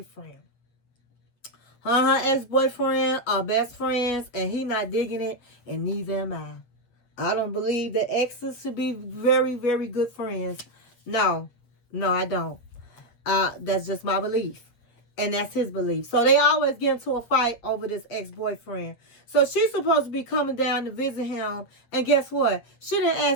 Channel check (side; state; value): right; late; 8.4 ms